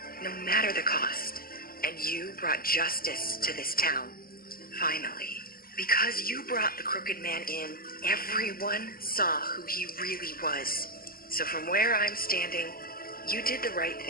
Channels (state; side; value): late; right; 0.42 ms